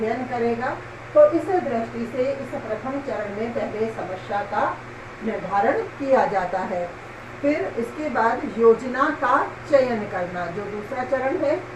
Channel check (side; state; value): both; identical; correlation 1.00